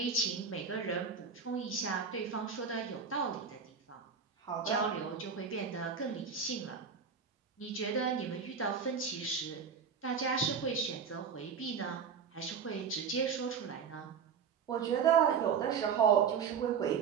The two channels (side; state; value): left; quieter; 6.4 dB